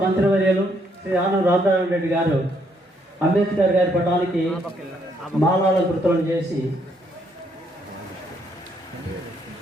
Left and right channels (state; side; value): normal; both; correlation 0.71